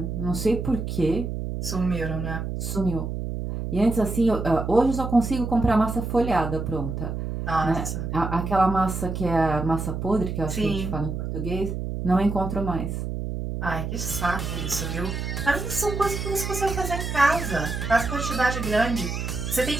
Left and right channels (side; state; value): right; noise; hum, 4 dB below the sound